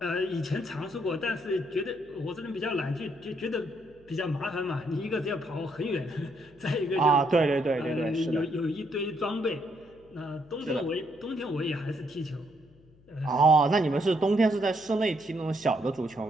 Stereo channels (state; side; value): noise; left; hum, 28 dB below the sound